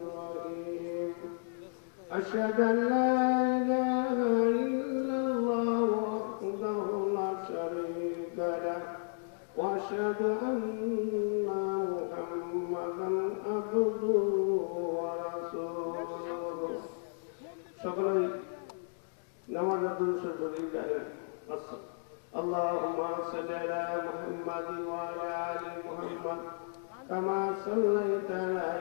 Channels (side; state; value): right; silent; digital silence